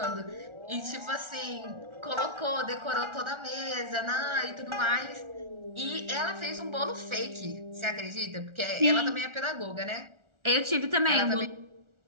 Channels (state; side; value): late; left; 1.4 ms